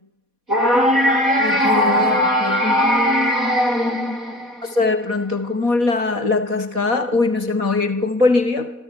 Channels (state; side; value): late; left; 4.1 ms